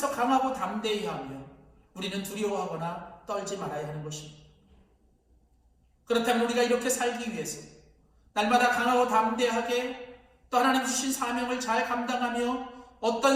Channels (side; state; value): both; identical; correlation 1.00